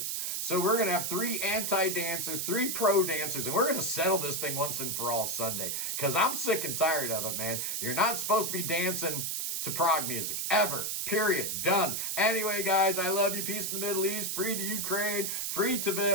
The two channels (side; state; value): right; noise; hiss, 1 dB below the sound